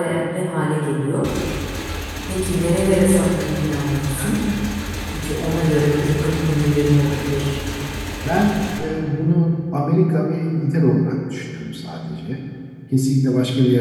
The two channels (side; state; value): both; identical; correlation 1.00